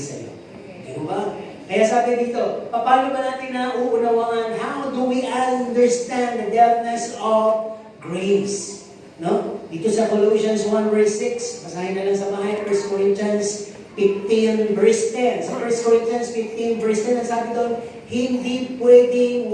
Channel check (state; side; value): identical; both; correlation 1.00